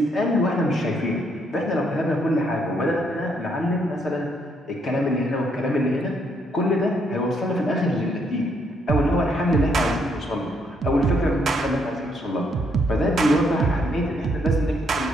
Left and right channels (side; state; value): both; normal; correlation 0.73